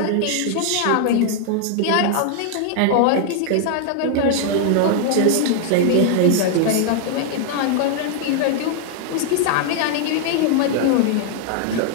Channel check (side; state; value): both; different; correlation 0.00